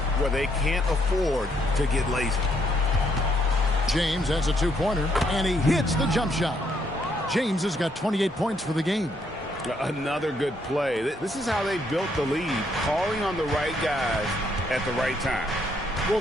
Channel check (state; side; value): normal; both; correlation 0.72